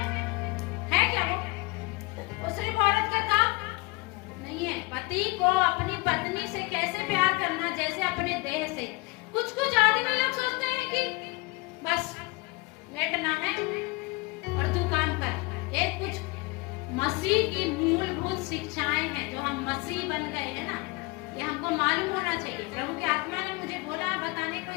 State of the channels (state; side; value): quieter; right; 25.2 dB